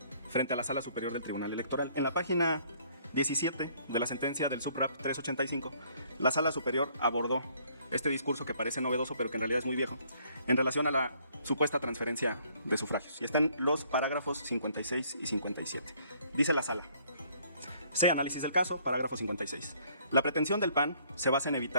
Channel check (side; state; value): both; inverted; correlation -0.62